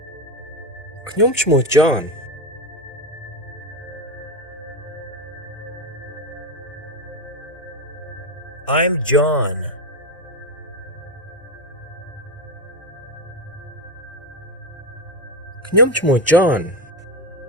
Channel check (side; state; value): both; normal; correlation 0.14